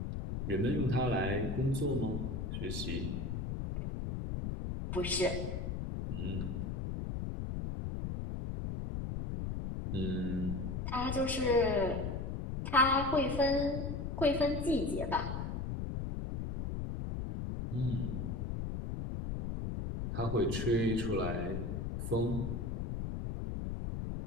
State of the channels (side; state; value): left; noise; rumble, 3 dB below the sound